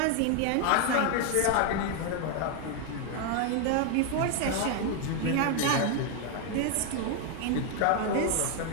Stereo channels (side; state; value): both; different; correlation 0.01